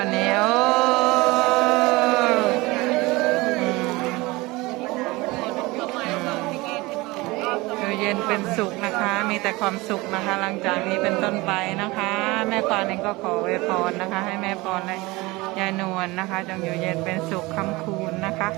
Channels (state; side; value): quieter; left; 22.2 dB